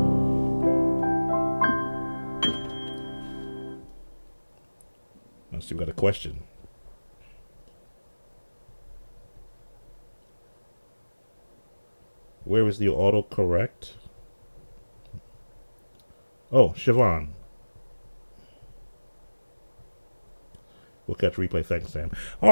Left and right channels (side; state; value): both; inverted; correlation -1.00